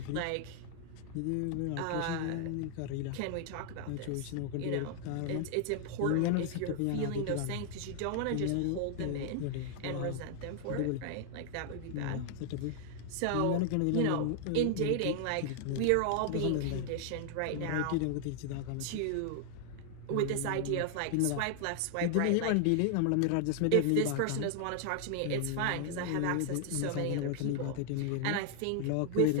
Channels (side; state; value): both; different; correlation 0.00